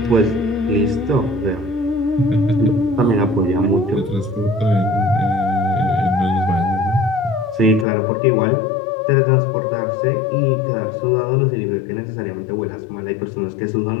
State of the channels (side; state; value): right; drops out; at 7.9 s